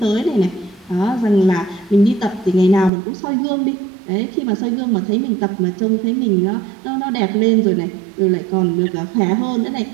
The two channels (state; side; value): drops out; left; at 2.9 s